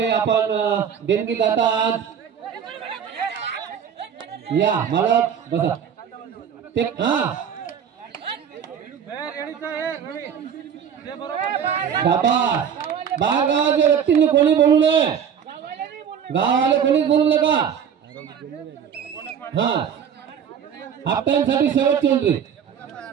आपण देणगी दाता आहात. या मालक बसा. ते शाबास. बाहेर गावाच्या व्यक्तींनी कोणी बोलू नये. गावाले कोणीच बोलू नका. हाफ टाइम साठी शेवटची एंट्री.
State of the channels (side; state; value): left; quieter; 8.0 dB